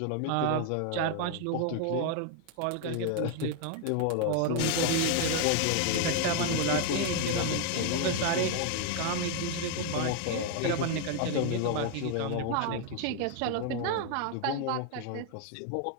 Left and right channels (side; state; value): both; different; correlation 0.00